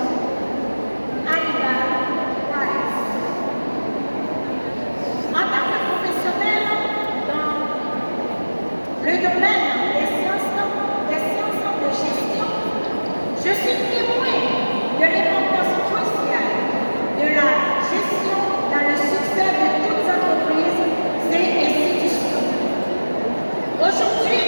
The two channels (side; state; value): both; inverted; correlation -1.00